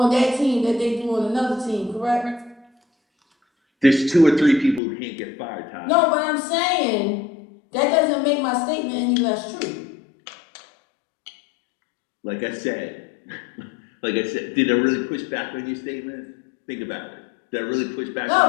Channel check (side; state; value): right; drops out; at 4.8 s